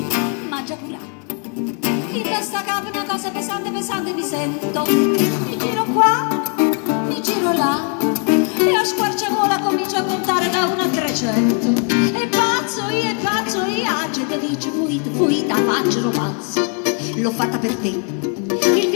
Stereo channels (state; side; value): quieter; right; 38.4 dB